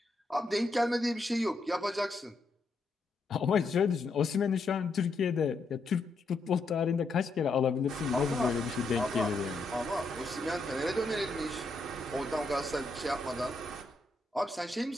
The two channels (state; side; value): quieter; right; 3.2 dB